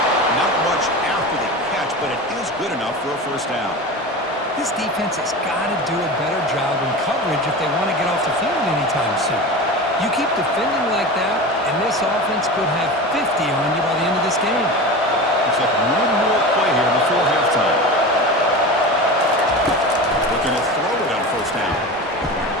Not much after the catch, but it is good enough for a 1st down. This defense has got to do a better job in coverage if they want to get off the field anytime soon. You keep defending like that, and this offense could have 50 on you by the end of this game. Looks like one more play here before halftime. Looking to throw it on 1st down.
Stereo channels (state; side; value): normal; both; correlation 0.29